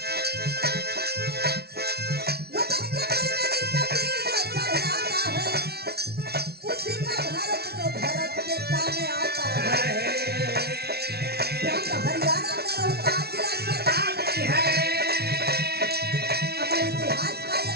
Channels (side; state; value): left; late; 0.46 ms